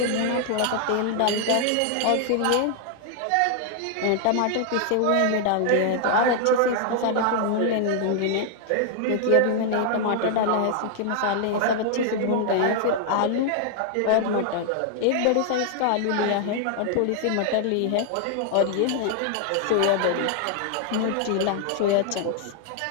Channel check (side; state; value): both; different; correlation 0.00